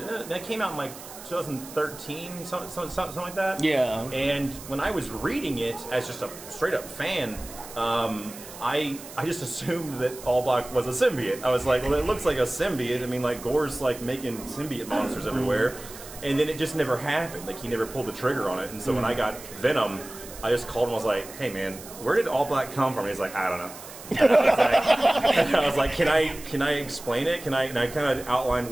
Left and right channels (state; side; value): noise; right; hiss, 15 dB below the sound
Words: came out in like 2013, something like that. Yeah. And when I was reading it as just a straight up fan, I just assumed that All Black was a symbiote. I was like, well, it looks like a symbiote. I mean, like Gore's like making symbiote monsters everywhere, and then it just never happened. Like he never pulled the trigger on it. And so when I got Venom, I just called him. I was like, hey man, where did All Black come from? He's like, I don't know. And I was like, can I explain it? And I kind of outlined